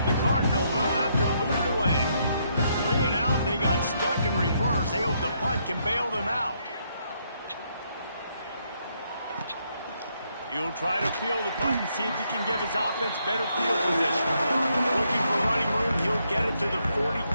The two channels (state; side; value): inverted; both; correlation -0.75